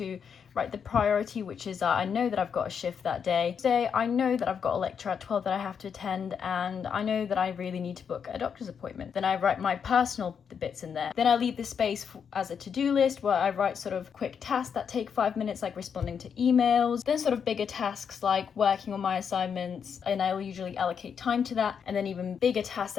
write the priority, which is I know that I've got a shift that day. Today, I know that I've got a lecture at 12 that I have to attend, and I know that I really need to book a doctor's appointment. Then I write my personal bits in there. Then I leave this space as a to-do list where I write sort of quick tasks that take 5 minutes, like responding to emails. Then sort of bigger tasks like working on my assignments, and I'll usually allocate time to that. And then even bigger tasks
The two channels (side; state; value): right; quieter; 7.0 dB